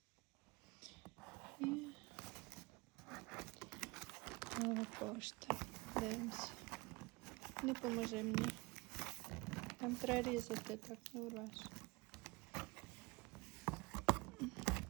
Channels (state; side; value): quieter; left; 24.7 dB